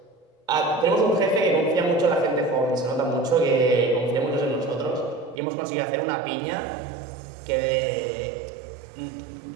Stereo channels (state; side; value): drops out; left; at 5.4 s